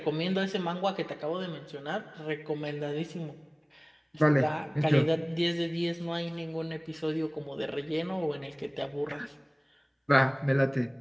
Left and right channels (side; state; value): both; identical; correlation 1.00